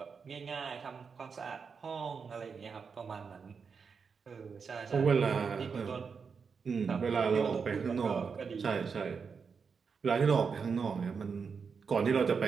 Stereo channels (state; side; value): quieter; left; 5.7 dB